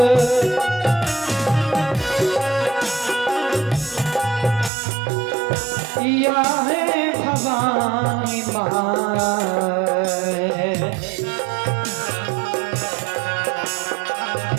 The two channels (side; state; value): left; drops out; at 4.7 s